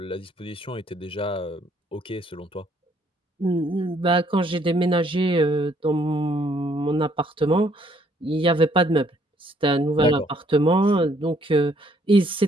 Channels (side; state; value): both; normal; correlation 0.66